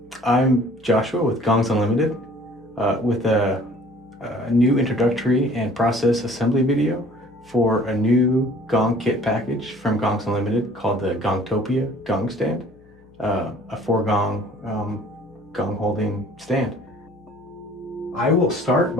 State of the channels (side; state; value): left; noise; hum, 28 dB below the sound